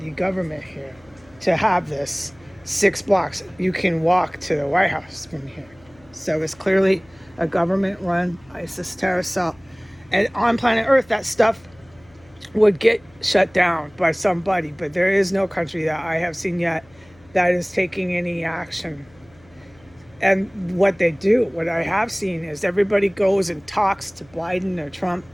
government here to have this 6 blocks. You can walk to the White House from here. So it's clearly a government-run ISIS terrorist cell. And on planet Earth, that stuff would get shut down by somebody. But there is no country that I have seen yet that is taking any action. And what they do, what I have seen, is everybody goes and talks to Biden or Trump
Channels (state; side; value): noise; left; hum, 28 dB below the sound